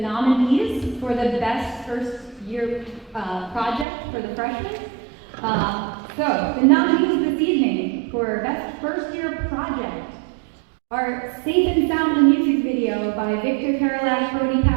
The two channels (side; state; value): left; drops out; at 3.9 s